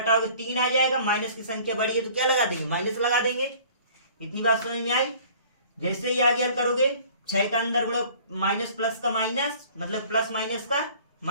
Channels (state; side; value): inverted; both; correlation -0.50